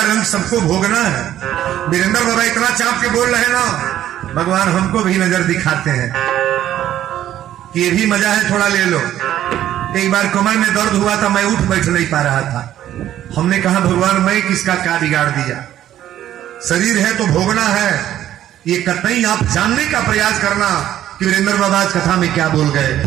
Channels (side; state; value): left; quieter; 12.0 dB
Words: रंग सबको भोगना है। वीरेंद्र बाबा इतना चाप के बोल रहे ना, भगवान हमको भी नजर दिखाते हैं कि ये भी मजा है, थोड़ा ले लो। एक बार कमर में दर्द हुआ था, मैं उठ बैठ नहीं पा रहा था। हमने कहा भगवान मैं किसका क्या बिगाड़ दिया, शरीर है तो भोगना है, ये कतई आप जानने का प्रयास करना कि वीरेंद्र बाबा आज कथा में क्या बोल गए।